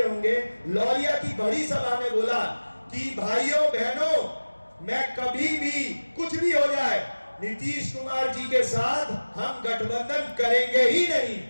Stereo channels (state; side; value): inverted; both; correlation -1.00